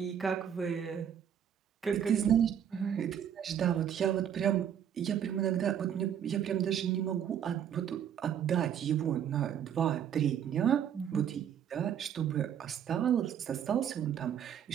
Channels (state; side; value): quieter; left; 9.0 dB